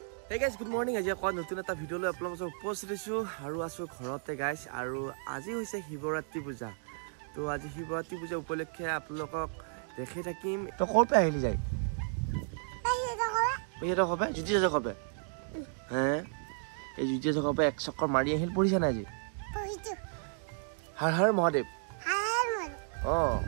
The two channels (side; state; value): left; silent; 56 dB below the other